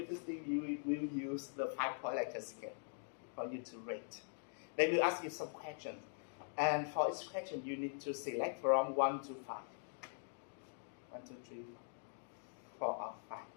will use the 5-point Likert scale for you to rate. They will ask you some questions. And for each question, you need to select from 1 to 5. 1, 2, 3, 4, or 5.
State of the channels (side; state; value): right; silent; digital silence